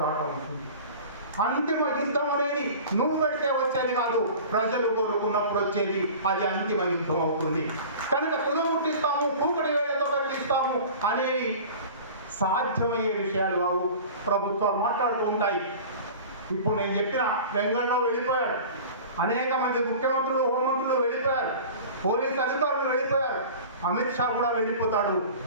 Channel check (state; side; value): inverted; both; correlation -0.39